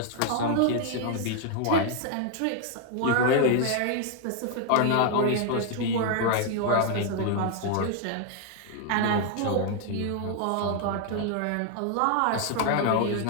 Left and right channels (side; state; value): both; different; correlation 0.00